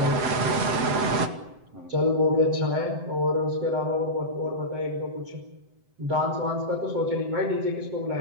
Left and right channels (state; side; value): late; left; 7.8 ms